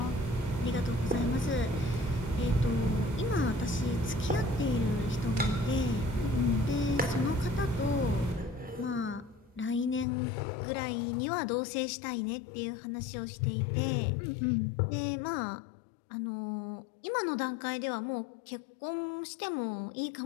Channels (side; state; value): right; drops out; at 10.1 s